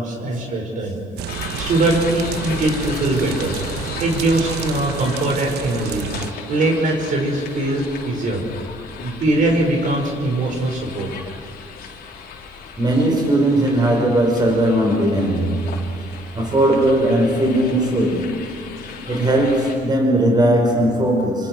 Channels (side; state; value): both; normal; correlation 0.62